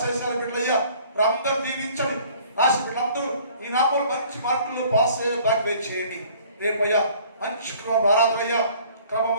బిడ్డయ్యా, అందరూ దీవించండి. రాసి వీళ్ళందరూ ఈ నామలు మంచి మార్కులు పాస్ అయ్యే దాన్ని చేయండి. రేపయ్యా మంచి ఆరాధనయ్యా,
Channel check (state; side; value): inverted; both; correlation -0.54